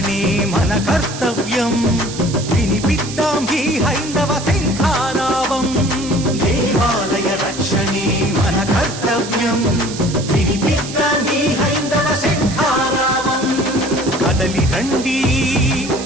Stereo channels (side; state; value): right; noise; hiss, 11 dB below the sound